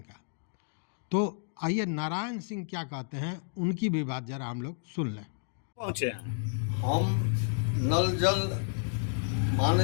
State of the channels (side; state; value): right; silent; digital silence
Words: का। तो आइए नारायण सिंह क्या कहते हैं, उनकी भी बात जरा हम लोग सुन लें। पहुंचे हैं हम नल जल